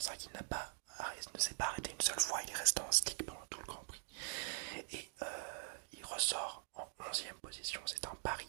il ne s'est pas arrêté une seule fois. Il est resté en stick pendant tout le Grand Prix. Et il ressort en 11e position. C'est un pari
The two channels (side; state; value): left; silent; digital silence